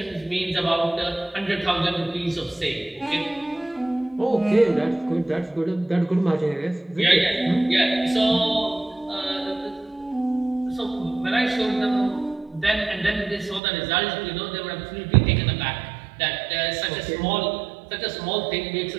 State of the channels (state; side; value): drops out; left; at 13.6 s